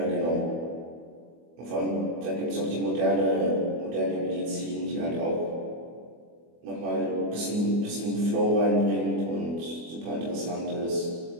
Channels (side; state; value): left; late; 24 ms